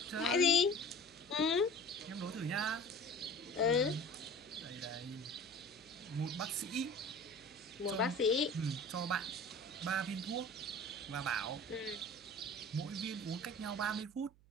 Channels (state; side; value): noise; right; hum, 27 dB below the sound